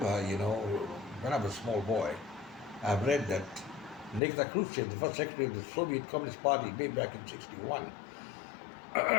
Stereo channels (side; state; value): right; drops out; at 4.2 s